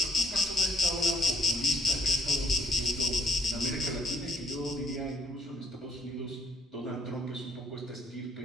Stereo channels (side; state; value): both; normal; correlation 0.62